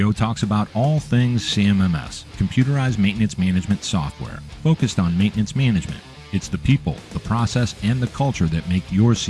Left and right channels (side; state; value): both; identical; correlation 1.00